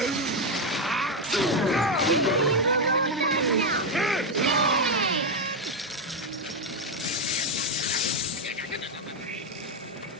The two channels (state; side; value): normal; both; correlation 0.06